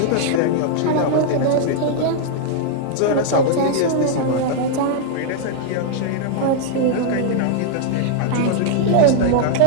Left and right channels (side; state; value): both; different; correlation -0.01